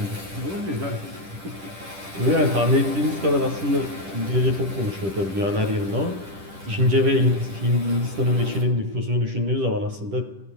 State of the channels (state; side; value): late; left; 10 ms